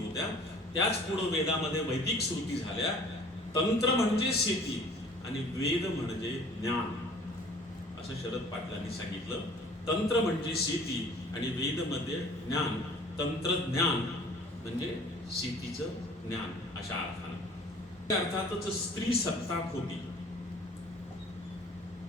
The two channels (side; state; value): both; normal; correlation 0.50